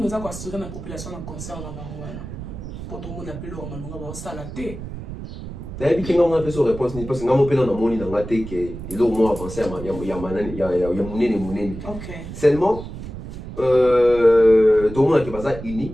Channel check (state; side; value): noise; right; rumble, 10 dB below the sound